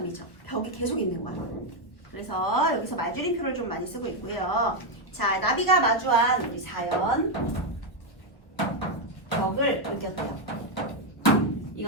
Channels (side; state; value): right; late; 1.1 ms